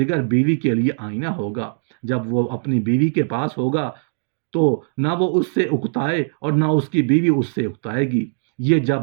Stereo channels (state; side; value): silent; left; digital silence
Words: بیوی کے لیے آئینہ ہوگا۔ جب وہ اپنی بیوی کے پاس ہوگا تو نہ وہ اس سے اکتائے اور نہ اس کی بیوی اس سے اکتائے گی۔ یہ جب